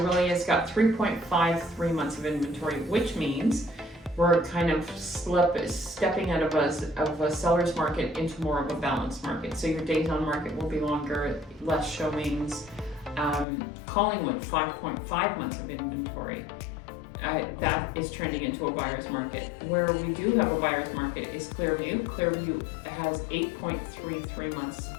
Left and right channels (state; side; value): drops out; right; at 13.5 s